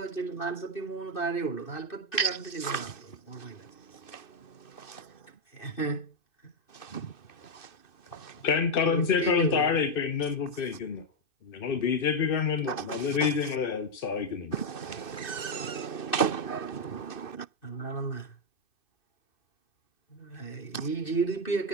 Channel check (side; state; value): right; late; 2.6 ms